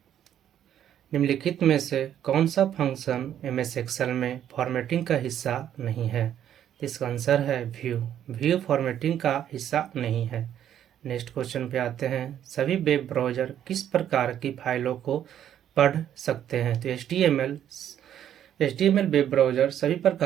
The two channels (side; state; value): left; quieter; 10.4 dB